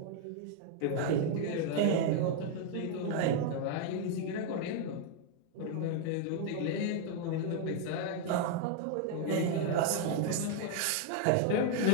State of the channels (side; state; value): both; different; correlation 0.00